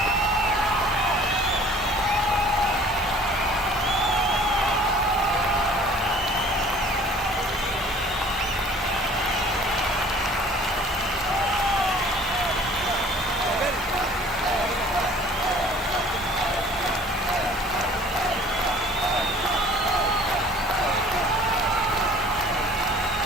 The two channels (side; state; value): both; normal; correlation 0.51